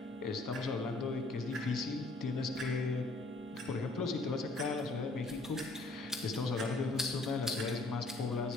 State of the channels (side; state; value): right; quieter; 3.1 dB